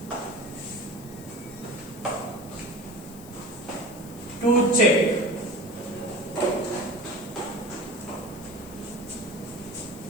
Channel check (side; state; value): left; noise; hiss, 18 dB below the sound